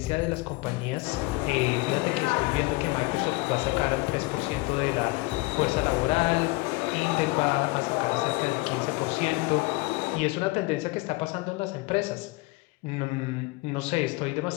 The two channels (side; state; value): right; quieter; 23.4 dB